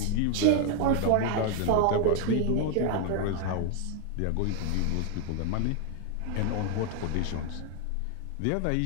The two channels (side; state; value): both; different; correlation 0.00